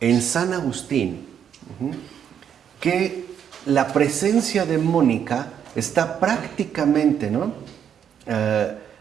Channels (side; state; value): left; quieter; 8.6 dB